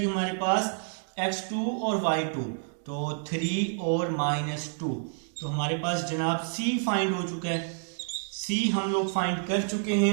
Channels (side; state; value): left; silent; 59 dB below the other